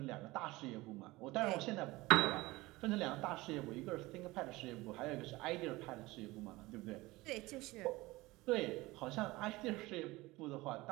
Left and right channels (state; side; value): quieter; left; 20.5 dB